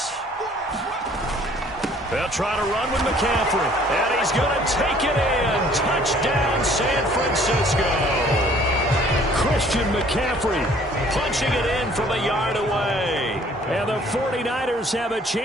They'll try to run with McCaffrey, and he's going to take it in. Touchdown, San Francisco. Christian McCaffrey punching it in from a yard away. And the 49ers have a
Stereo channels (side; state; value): both; normal; correlation 0.56